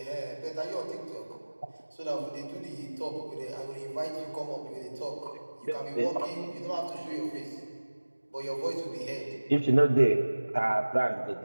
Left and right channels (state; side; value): inverted; both; correlation -1.00